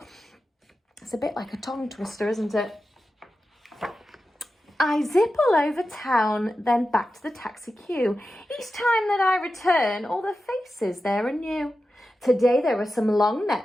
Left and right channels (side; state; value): both; normal; correlation 0.92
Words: it's a bit like a tongue twister, isn't it? I zip all over town, then back to the taxi queue. Each time that I return, all the faces there are new. Today there are some long